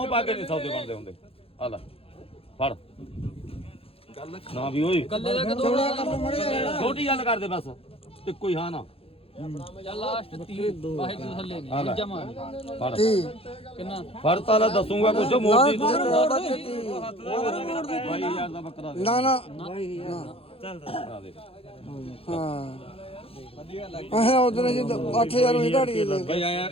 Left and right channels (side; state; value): right; late; 0.27 ms